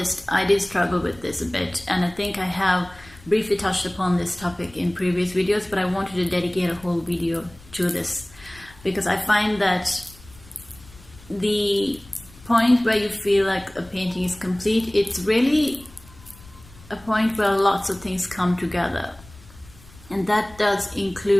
I did struggle with this a bit, and I think I have briefly touched upon this topic in previous videos, but I wanted to dedicate a whole video to this because I find that the point where you feel like a painting is complete, it's really a point where lots of things come together, and that does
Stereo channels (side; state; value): left; noise; rumble, 22 dB below the sound